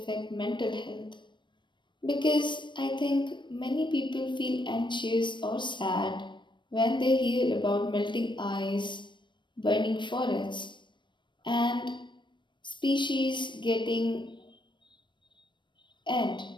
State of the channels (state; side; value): late; right; 0.22 ms